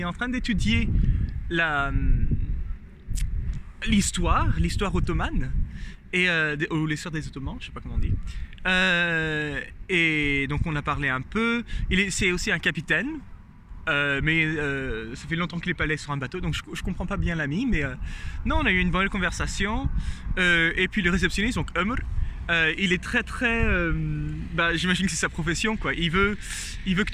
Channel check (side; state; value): both; identical; correlation 1.00